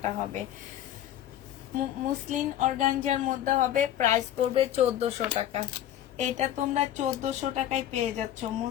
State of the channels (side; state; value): right; quieter; 11.7 dB